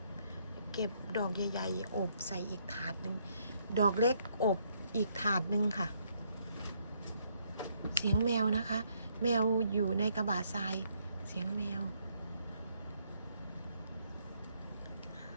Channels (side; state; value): both; inverted; correlation -0.71